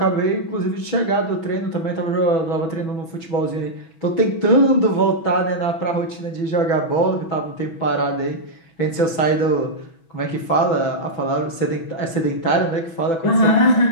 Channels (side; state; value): right; late; 6.1 ms